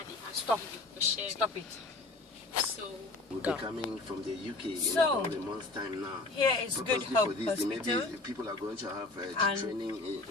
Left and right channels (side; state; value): right; quieter; 3.2 dB